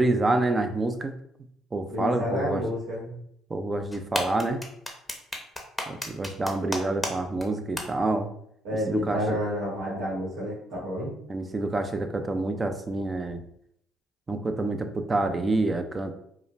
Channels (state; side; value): normal; both; correlation 0.79